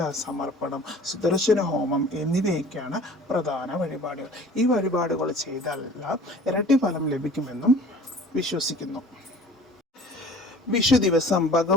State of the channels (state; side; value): normal; both; correlation 0.46